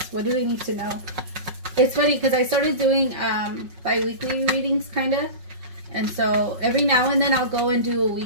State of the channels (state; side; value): late; left; 5.4 ms